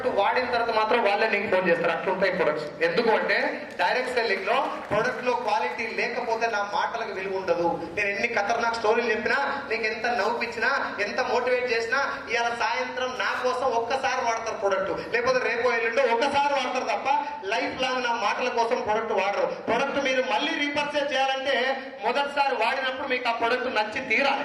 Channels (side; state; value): both; identical; correlation 1.00